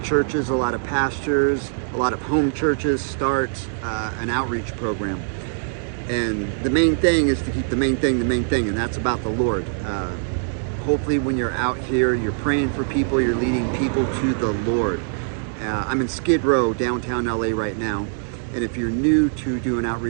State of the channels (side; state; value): left; silent; digital silence